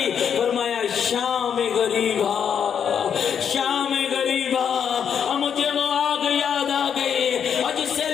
فرمایا شام غریبا، شام غریبا، اور مجھے وہ آگ یاد آ گئی اور جس سے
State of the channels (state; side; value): quieter; right; 7.8 dB